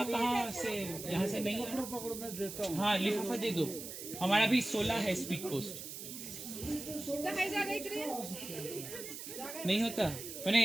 कहाँ से, यहाँ से नहीं है। पकड़ो मैं देता हूँ। हाँ लिफाफा दे दो, हमारा भी 16 है स्पीड पोस्ट। नहीं होता, मैंने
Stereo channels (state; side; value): noise; right; hiss, 9 dB below the sound